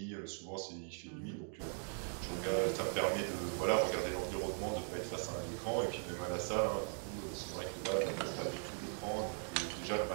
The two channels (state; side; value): silent; left; 51 dB below the other